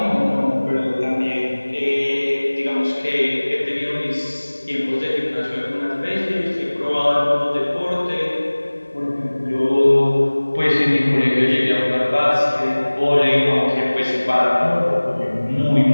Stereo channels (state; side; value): inverted; both; correlation -1.00